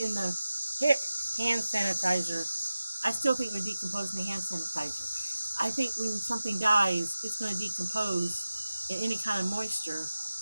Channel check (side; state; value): both; inverted; correlation -0.95